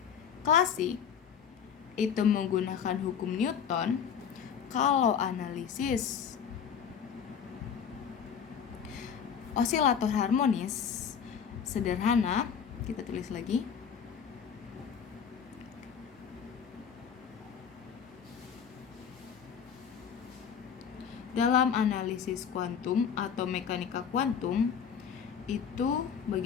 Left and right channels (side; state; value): right; quieter; 7.5 dB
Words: klasik itu menggunakan hukum Newton, kalau analisis osilator harmonis sederhana, kita tulis lagi. Dalam analisis kuantum atau mekanika kuantum itu